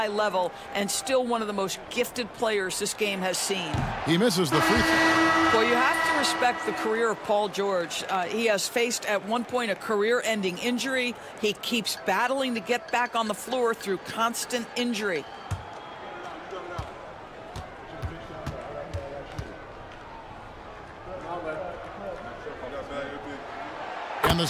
level and still one of the most gifted players this game has seen. He misses the free throw. Well, you have to respect the career of Paul George. He has faced at one point a career-ending injury. He keeps battling to get back on the floor through constant injury. And the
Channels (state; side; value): identical; both; correlation 1.00